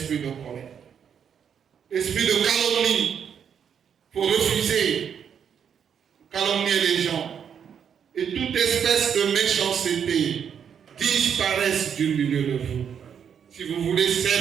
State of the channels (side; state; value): left; quieter; 7.8 dB